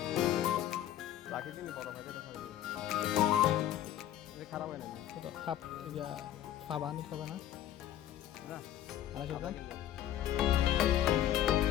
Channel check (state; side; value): quieter; right; 12.0 dB